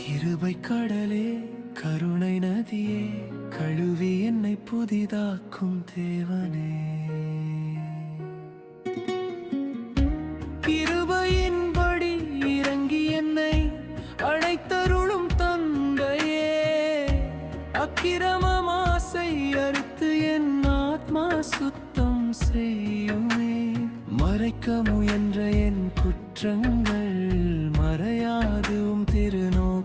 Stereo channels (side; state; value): both; identical; correlation 1.00